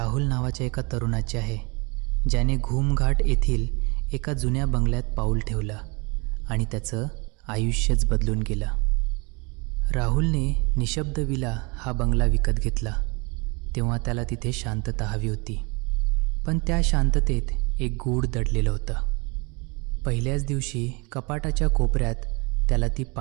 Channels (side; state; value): left; quieter; 29.7 dB